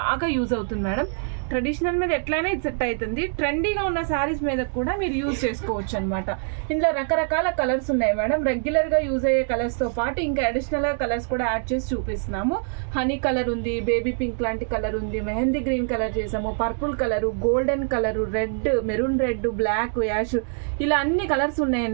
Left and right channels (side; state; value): left; silent; 62 dB below the other